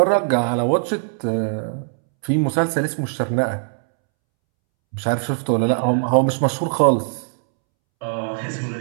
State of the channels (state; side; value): silent; left; 65 dB below the other